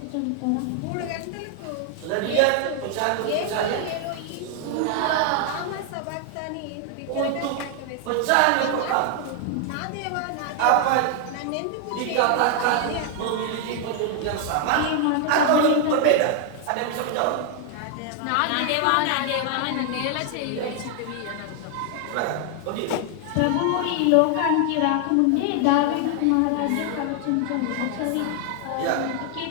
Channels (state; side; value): different; both; correlation 0.00